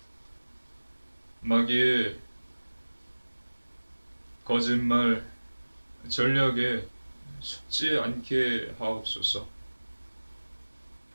마귀의 거짓말, 전략에 속지 않게 하옵소서.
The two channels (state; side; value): inverted; both; correlation -1.00